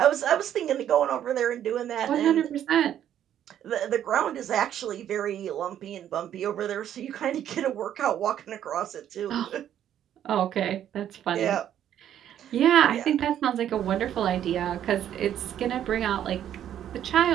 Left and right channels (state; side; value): quieter; left; 10.6 dB